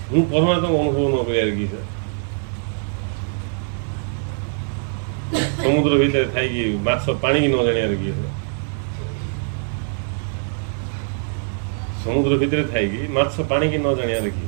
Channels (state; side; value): silent; left; digital silence